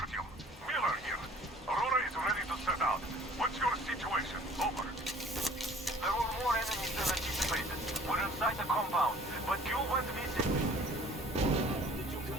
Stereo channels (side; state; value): both; normal; correlation 0.52